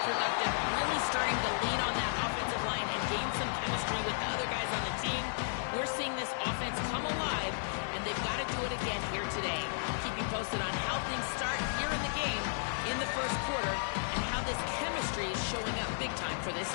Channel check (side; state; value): right; silent; digital silence